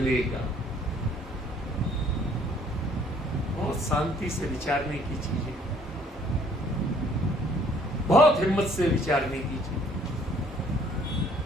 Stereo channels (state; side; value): normal; both; correlation 0.60